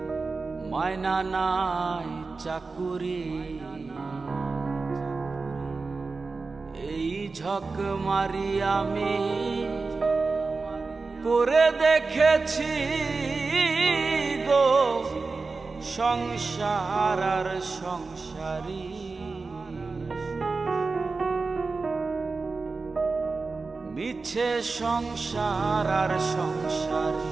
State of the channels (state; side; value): quieter; left; 4.0 dB